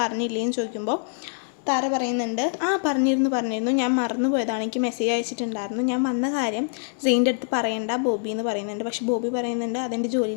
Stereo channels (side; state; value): right; silent; digital silence